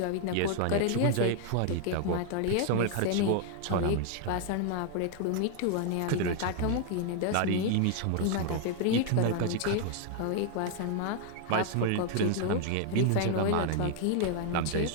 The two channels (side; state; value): both; different; correlation 0.00